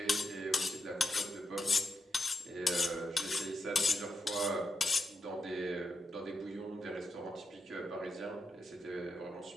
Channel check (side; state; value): both; normal; correlation 0.85